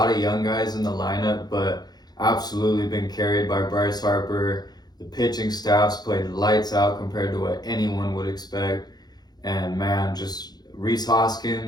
of young guys in the lineup, but absolutely been carried by Bryce Harper. The pitching staff's played lights out compared to what anyone would expect. And man, just Rhys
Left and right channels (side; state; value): right; late; 0.19 ms